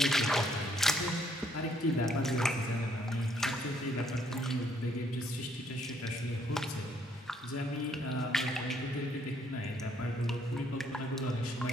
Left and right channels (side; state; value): both; normal; correlation 0.68